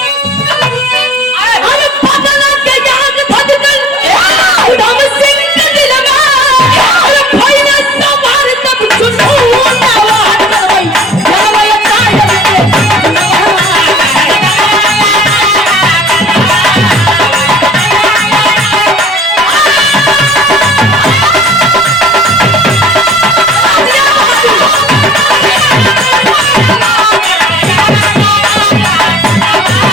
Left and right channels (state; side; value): normal; both; correlation 0.49